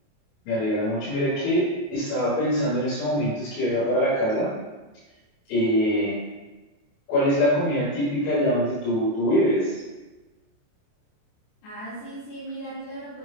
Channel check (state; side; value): late; right; 28 ms